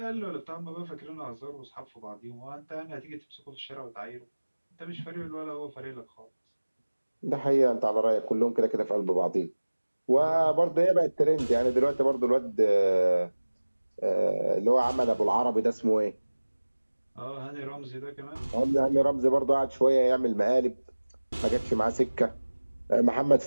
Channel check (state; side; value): inverted; both; correlation -1.00